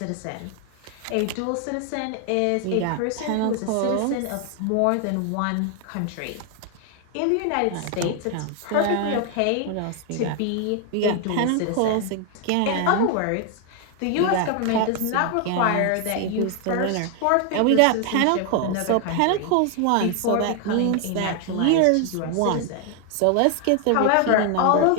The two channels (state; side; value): different; both; correlation 0.00